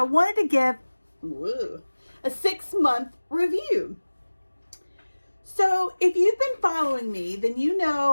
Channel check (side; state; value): both; inverted; correlation -1.00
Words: wanted to give a 6-month review. So if you've been following me, then you